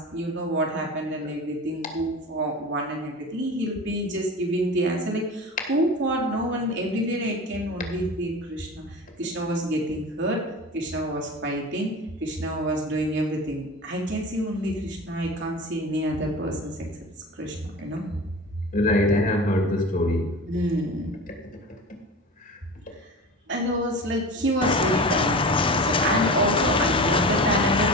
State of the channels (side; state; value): both; normal; correlation 0.33